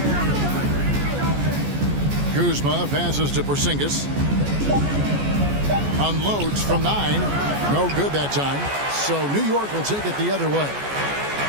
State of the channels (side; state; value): left; late; 14 ms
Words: Kuzma passes to Porzingis. Unloads from 9. No good that time. So New York will take it the other way.